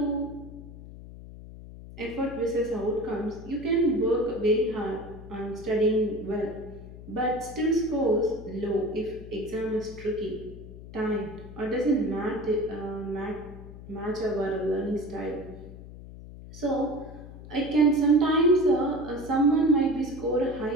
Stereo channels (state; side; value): noise; left; hum, 15 dB below the sound